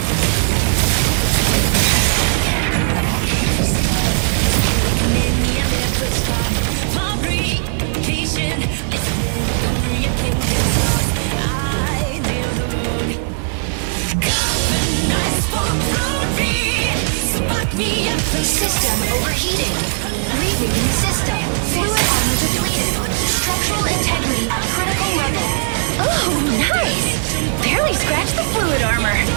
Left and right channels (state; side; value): silent; left; digital silence